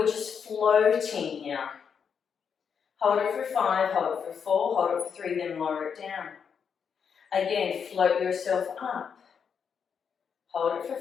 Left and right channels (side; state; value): right; quieter; 6.8 dB